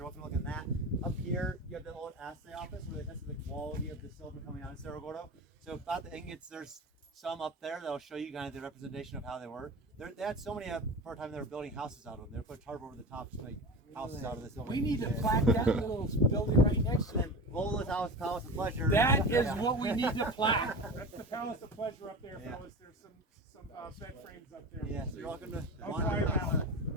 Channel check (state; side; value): normal; both; correlation 0.28